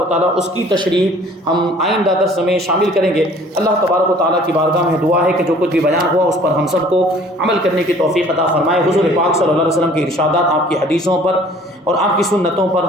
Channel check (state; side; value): normal; both; correlation 0.52